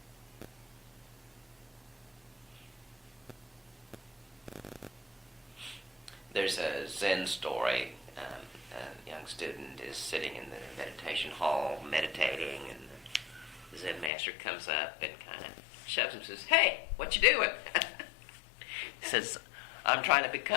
There's a Zen story. A young student is sitting in the meditation hall meditating, and the Zen master comes up and kind of shoves him and says, "Hey, what you doing?" He says, "I'm trying to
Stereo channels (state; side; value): drops out; right; at 14.1 s